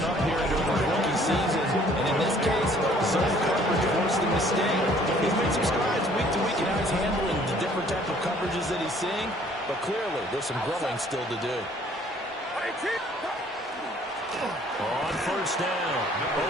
up here during the rookie season. And in this case, zone coverage forced the mistake. He's made some strides week to week in how he's handling the different type of coverages that he's seeing. But clearly, there's some growing still to do. On 1st down,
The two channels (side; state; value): both; normal; correlation 0.58